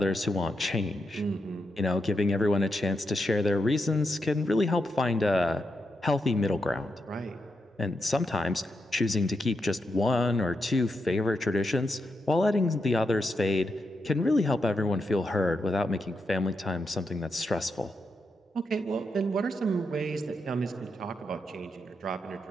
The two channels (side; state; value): both; normal; correlation 0.84